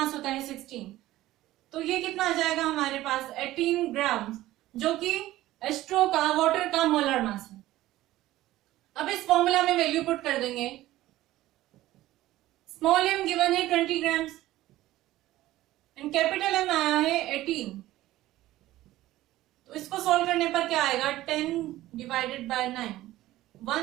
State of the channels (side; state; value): left; quieter; 15.8 dB